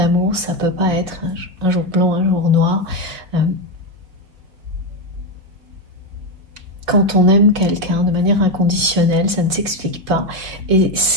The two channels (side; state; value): left; late; 5.2 ms